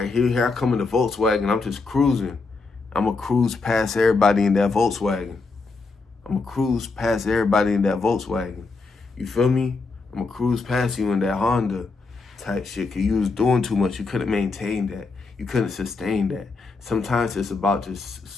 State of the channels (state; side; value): quieter; right; 4.0 dB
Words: here I come in the Volkswagen. I'm just cruising. I'm going to cruise past everybody in that Volkswagen. You feel me? I'm going to cruise past you in that Honda type shit because you was doing too much. You couldn't maintain that. You couldn't sustain that. Sometimes it's about just